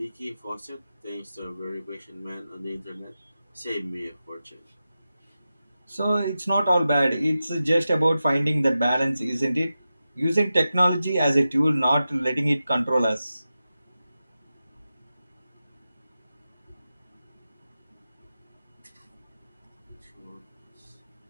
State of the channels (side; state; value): both; inverted; correlation -0.92